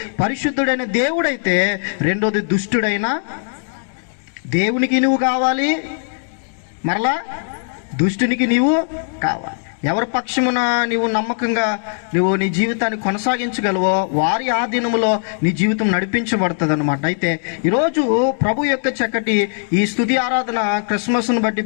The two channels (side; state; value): right; silent; digital silence